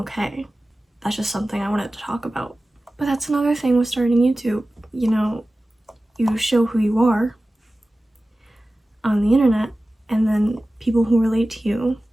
That's just something I wanted to talk about. But that's another thing with starting YouTube. You know, you show who you are on the internet, and then people who relate to you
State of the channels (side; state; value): both; normal; correlation 0.96